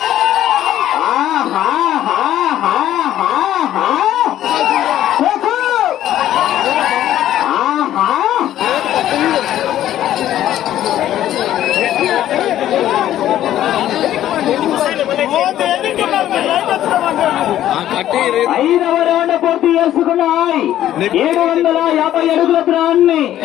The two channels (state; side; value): quieter; right; 12.4 dB